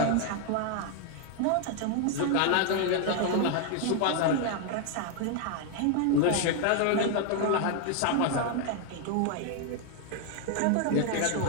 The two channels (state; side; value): different; both; correlation 0.01